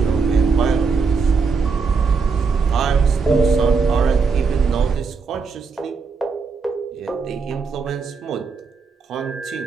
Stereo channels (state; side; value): quieter; left; 5.0 dB